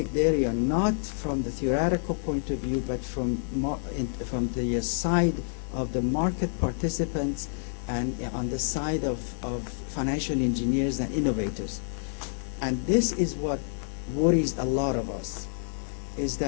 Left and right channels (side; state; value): right; silent; 59 dB below the other